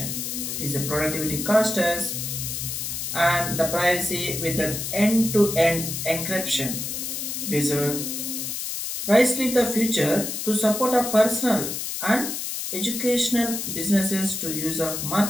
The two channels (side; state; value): left; noise; hiss, 4 dB below the sound